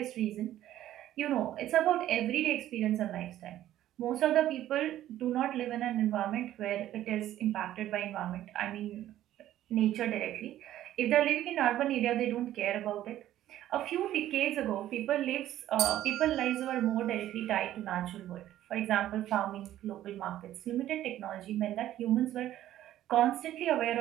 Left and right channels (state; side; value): quieter; left; 13.0 dB